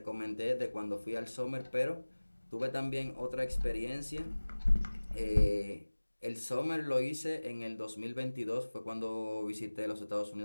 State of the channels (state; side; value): inverted; both; correlation -1.00